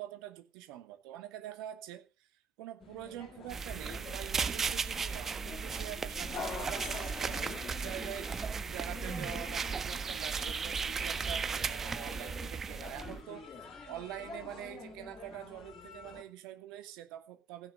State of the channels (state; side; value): quieter; left; 4.9 dB